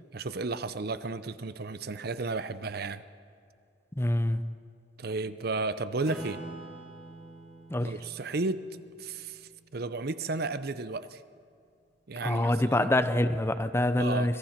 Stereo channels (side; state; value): both; normal; correlation 0.58